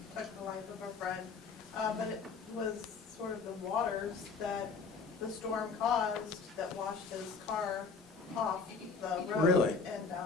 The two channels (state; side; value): quieter; right; 5.0 dB